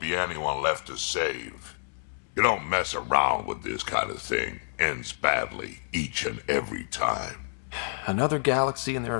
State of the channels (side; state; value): right; silent; 59 dB below the other